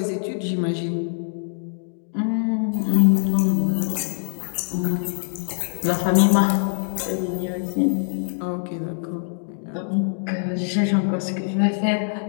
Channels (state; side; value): silent; right; digital silence